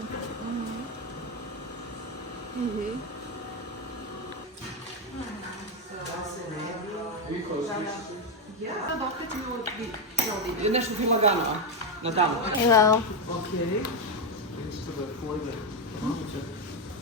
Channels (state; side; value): normal; both; correlation 0.07